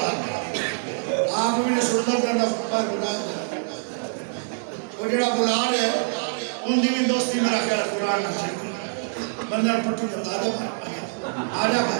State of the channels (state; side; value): silent; left; 62 dB below the other